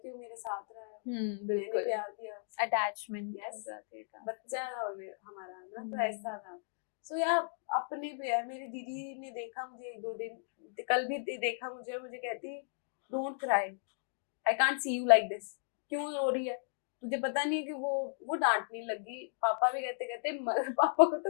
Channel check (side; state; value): right; silent; digital silence